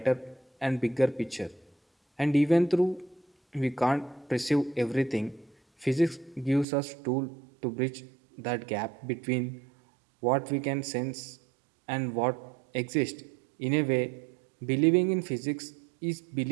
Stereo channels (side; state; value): left; drops out; at 6.7 s